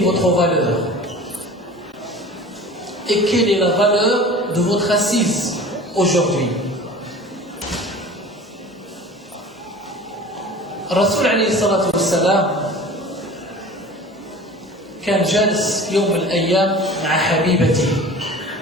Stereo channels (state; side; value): normal; both; correlation 0.40